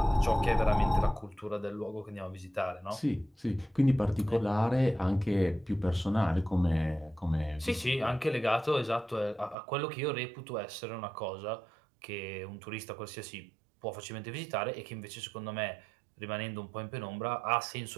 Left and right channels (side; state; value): left; drops out; at 9.6 s